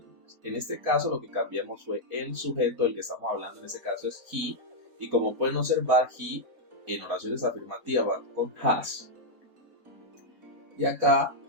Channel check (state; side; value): late; left; 4.1 ms